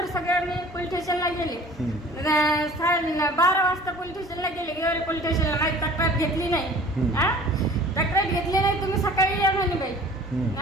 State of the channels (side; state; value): both; normal; correlation 0.47